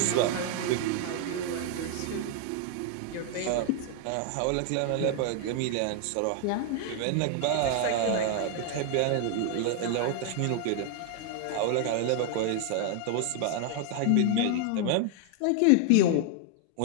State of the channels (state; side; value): different; both; correlation 0.00